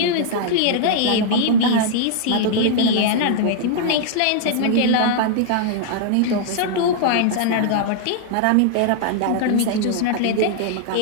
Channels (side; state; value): both; different; correlation -0.01